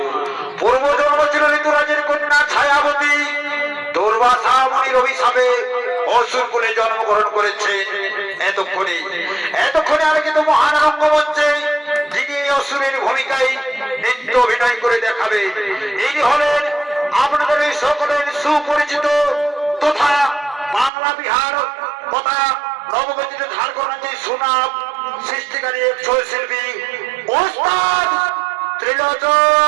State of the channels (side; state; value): left; drops out; at 20.9 s